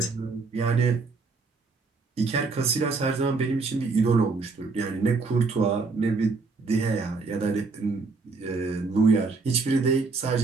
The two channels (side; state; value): left; quieter; 4.2 dB